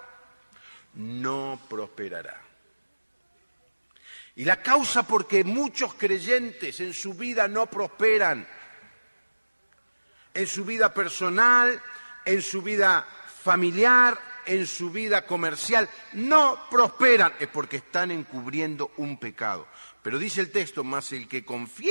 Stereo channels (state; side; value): inverted; both; correlation -1.00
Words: no prosperará. Y la causa por que muchos creyentes en su vida no prosperan en su vida personal, en su vida familiar, en su vida comercial, no prosperan, es porque están encubriendo un pecado. Pero dice el texto, más el que